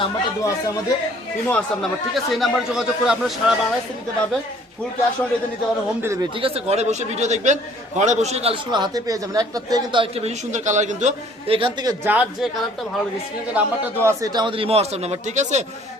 নাম্বারটা দেওয়া আছে আমাদের ইমো হোয়াটসঅ্যাপ নাম্বার। ঠিক আছে, এই নাম্বারে যোগাযোগ করে আপনারা সারা বাংলাদেশে নিতে পারবেন। ফুল ক্যাশ অন ডেলিভারি নিতে পারবেন, হোম ডেলিভারি। ঠিক আছে, ঘরে বসে ভিডিও দেখবেন, ঘরে বসে কালেকশন হাতে পেয়ে যাবেন। একটার থেকে কিন্তু আরেকটা বেশি সুন্দর কালার। কিন্তু এখান থেকে যার যে কালারটা ভালো লাগে, স্ক্রিনে যে নাম্বারটা দেওয়া আছে এটা আমাদের ইমো হোয়াটসঅ্যাপ নাম্বার। ঠিক আছে,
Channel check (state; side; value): normal; both; correlation 0.57